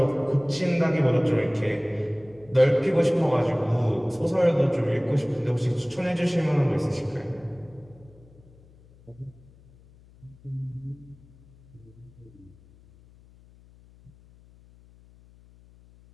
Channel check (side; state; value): left; noise; hum, 26 dB below the sound